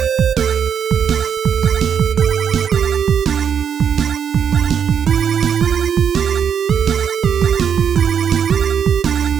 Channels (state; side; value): quieter; left; 7.9 dB